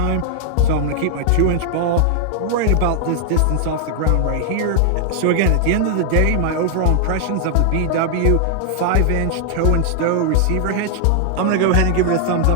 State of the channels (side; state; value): both; different; correlation 0.00